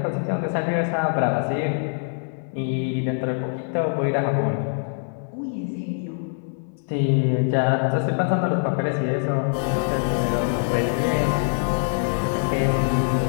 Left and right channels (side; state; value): right; silent; 63 dB below the other